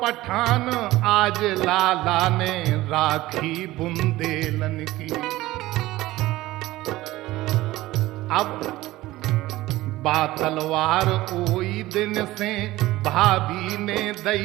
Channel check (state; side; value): quieter; left; 17.4 dB